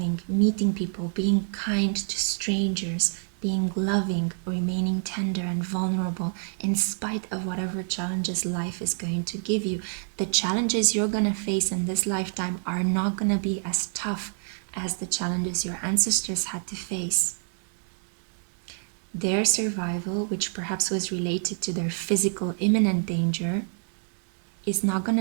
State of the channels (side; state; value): left; silent; digital silence